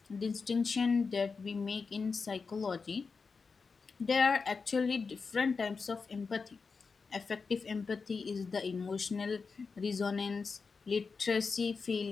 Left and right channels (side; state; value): right; quieter; 4.9 dB